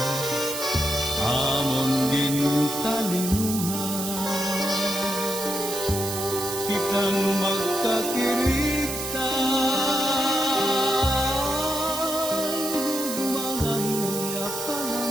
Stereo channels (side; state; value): right; noise; hiss, 5 dB below the sound